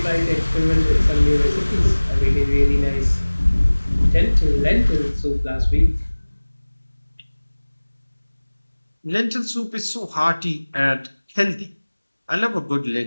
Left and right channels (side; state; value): both; inverted; correlation -1.00